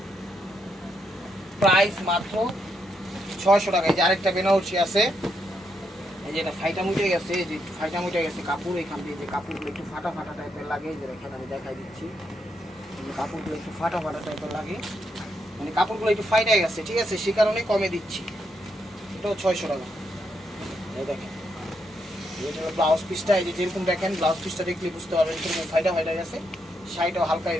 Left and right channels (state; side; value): normal; both; correlation 0.79